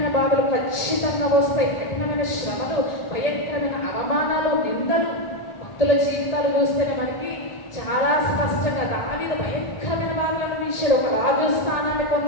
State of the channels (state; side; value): late; right; 1.4 ms